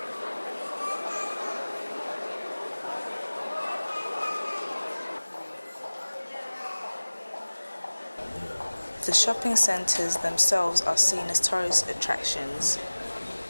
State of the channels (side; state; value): both; inverted; correlation -1.00